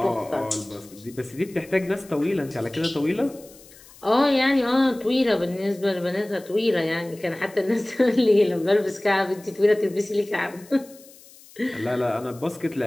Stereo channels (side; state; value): left; noise; hiss, 23 dB below the sound